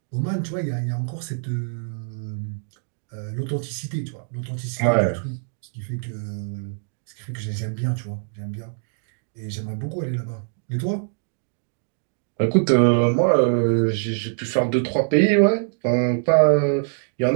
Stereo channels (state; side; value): silent; left; digital silence